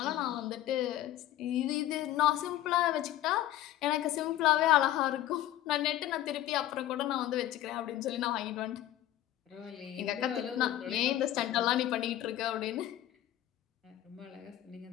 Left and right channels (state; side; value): quieter; right; 13.2 dB